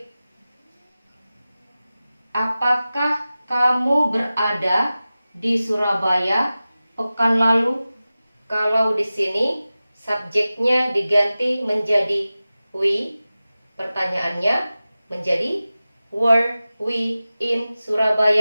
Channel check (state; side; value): inverted; both; correlation -0.96